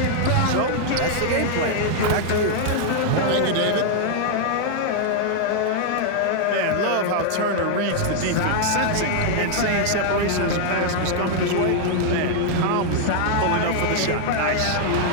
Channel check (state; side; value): different; both; correlation 0.00